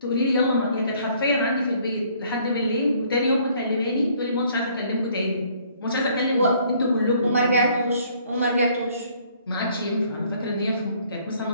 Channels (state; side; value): inverted; both; correlation -0.61